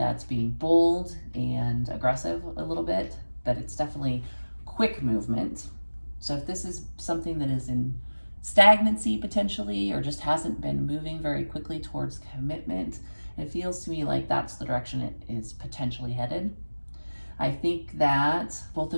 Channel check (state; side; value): inverted; both; correlation -1.00